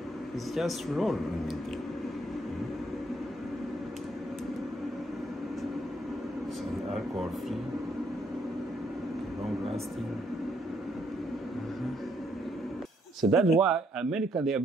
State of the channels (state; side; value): normal; both; correlation 0.71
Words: It's just rolling in there. Some alcohol free, long lasting. So that's why America, they are